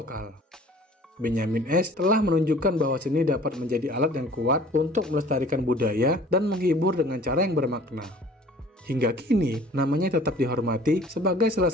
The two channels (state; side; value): normal; both; correlation 0.50